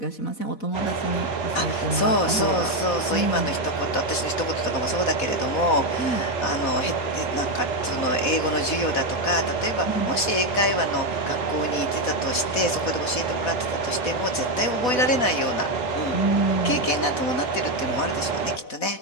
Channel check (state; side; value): late; right; 4.1 ms